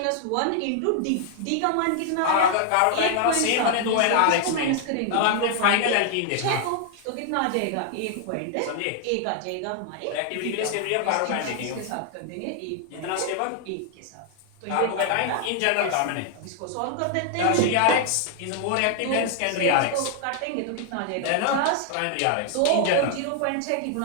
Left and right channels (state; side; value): different; both; correlation 0.00